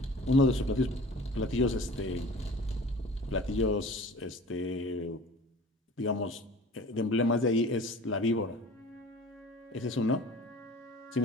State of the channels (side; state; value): both; normal; correlation 0.43